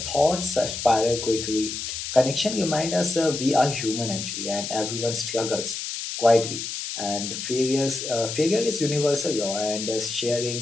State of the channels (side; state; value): left; noise; hiss, 5 dB below the sound